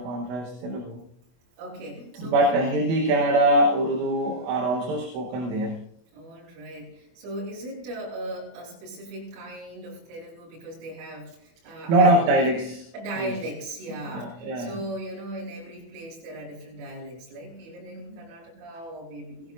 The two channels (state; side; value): late; left; 24 ms